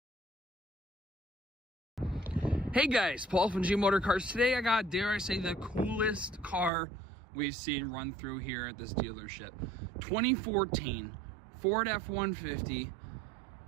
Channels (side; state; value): left; drops out; at 6.7 s